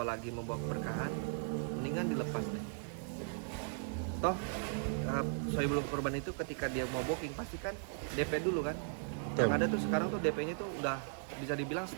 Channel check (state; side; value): silent; left; digital silence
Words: membawa keberkahan, mendingan dilepas deh. Toh Saiful Kurban itu ketika dia mau booking pasti kan DP dulu kan. Yang ada tuh sekarang tuh DP-nya tuh udah bisa dibilang